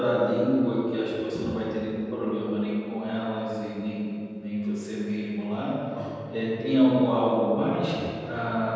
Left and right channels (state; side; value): identical; both; correlation 1.00